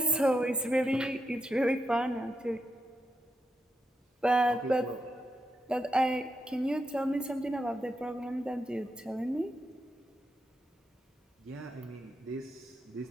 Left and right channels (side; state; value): both; normal; correlation 0.84